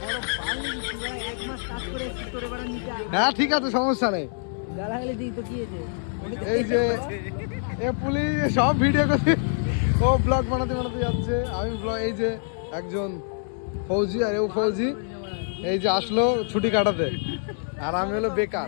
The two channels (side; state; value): right; silent; digital silence